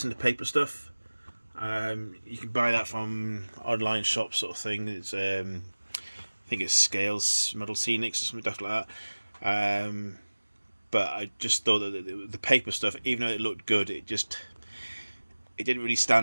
the paper stuff. You can buy that from online shops sort of thing. It's think it's Scales Model Scenics or something like that. But I just thought that the paper stuff, even though it looked good, it didn't really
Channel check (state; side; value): inverted; both; correlation -1.00